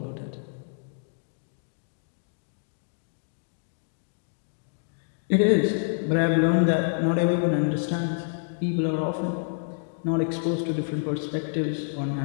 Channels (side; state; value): right; silent; digital silence